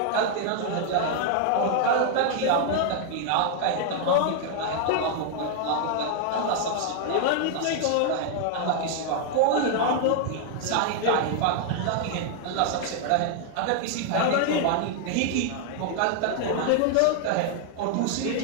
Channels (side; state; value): both; different; correlation 0.00